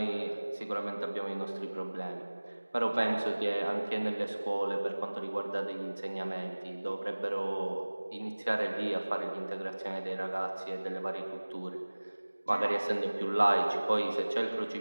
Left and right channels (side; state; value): both; inverted; correlation -1.00